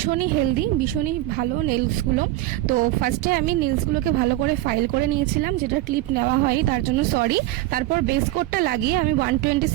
হেলদি, ভীষণই ভালো নেলসগুলো। তো ফার্স্টে আমি নেলসগুলোকে ভালো করে ফাইল করে নিয়েছিলাম, যেটা ক্লিপ নেওয়া হয়নি তার জন্য সরি। তারপর বেস কোটটা লাগিয়ে আমি 120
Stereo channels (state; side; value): quieter; left; 15.9 dB